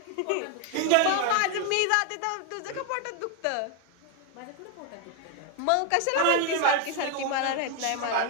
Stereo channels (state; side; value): different; both; correlation 0.01